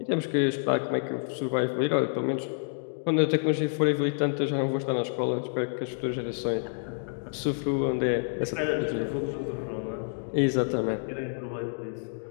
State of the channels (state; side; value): silent; right; digital silence